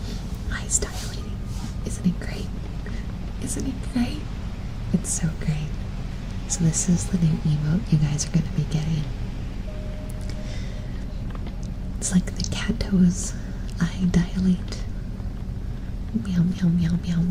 Eyes dilating. Isn't it great? Isn't it great? It's so great. So this is the new emote you guys are going to be getting. It's like the cat toes. Eye dilate. Meow, meow, meow, meow,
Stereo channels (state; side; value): identical; both; correlation 1.00